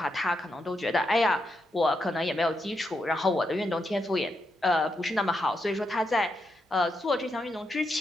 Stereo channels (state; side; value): normal; both; correlation 0.83